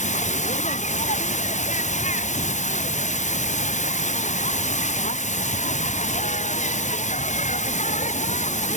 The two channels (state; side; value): late; right; 0.35 ms